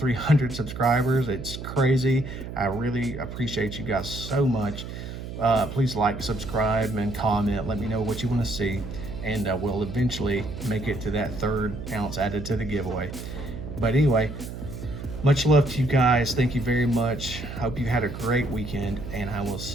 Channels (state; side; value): noise; right; hum, 9 dB below the sound